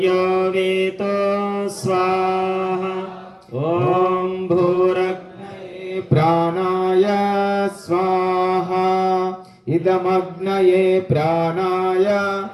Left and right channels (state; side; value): identical; both; correlation 1.00